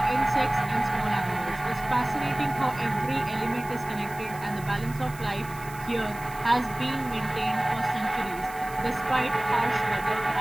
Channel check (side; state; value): right; noise; hiss, 18 dB below the sound